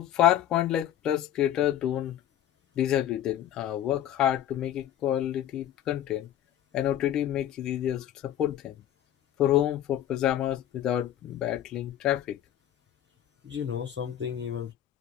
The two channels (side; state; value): right; quieter; 11.4 dB